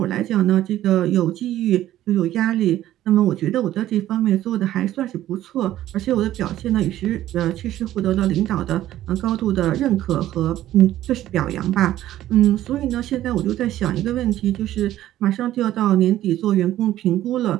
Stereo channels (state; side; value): quieter; left; 13.4 dB